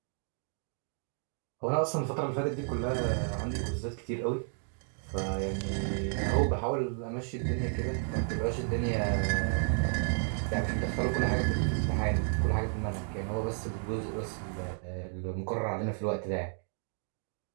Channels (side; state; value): left; silent; 56 dB below the other